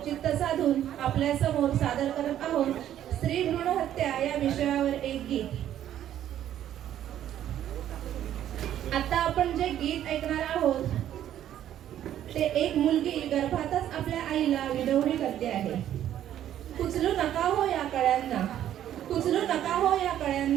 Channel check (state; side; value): quieter; left; 11.3 dB